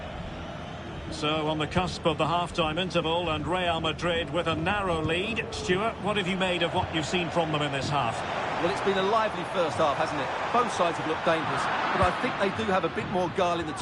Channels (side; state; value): both; identical; correlation 1.00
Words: So, on the cusp of the half-time interval, and Real Madrid with a narrow lead. Stuart, what have you made of what you've seen from them in this half? Well, it's been a lively first half, hasn't it? Both sides have looked dangerous, but I think they do have a bit more guile in the